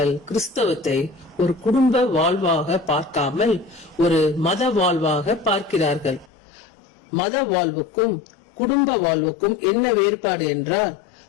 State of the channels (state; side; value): drops out; right; at 6.3 s